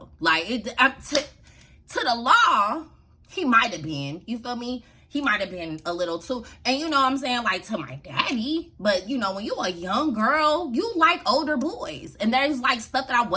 Like, to the law, he might have been. You feel me? He might have been a little too. And you know what I'm saying? Like, to my daddy. But, you know, when you a young girl, you like older boys. And there's, like, stuff that I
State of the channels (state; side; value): identical; both; correlation 1.00